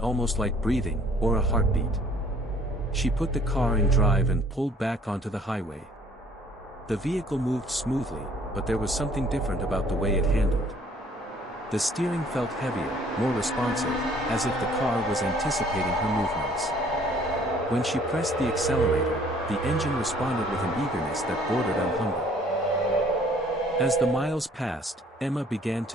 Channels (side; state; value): both; normal; correlation 0.58